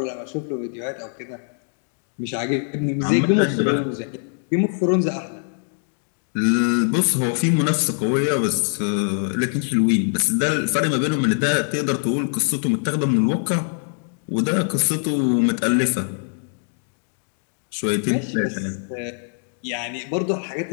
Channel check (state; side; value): silent; right; 64 dB below the other